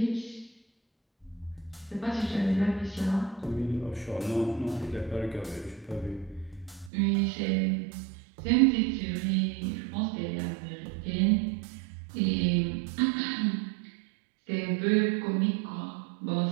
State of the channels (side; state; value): left; drops out; at 6.9 s